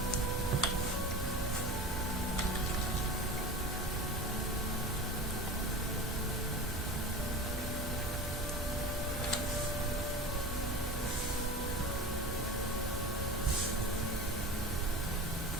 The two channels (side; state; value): both; normal; correlation 0.33